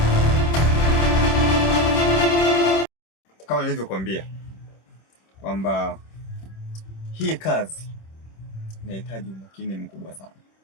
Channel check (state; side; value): late; right; 26 ms